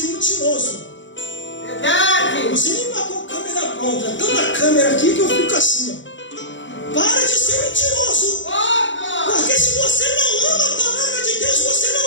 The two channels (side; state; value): right; late; 0.54 ms